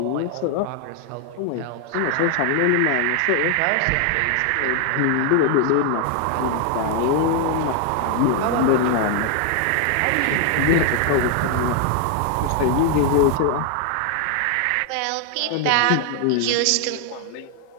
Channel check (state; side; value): different; both; correlation 0.00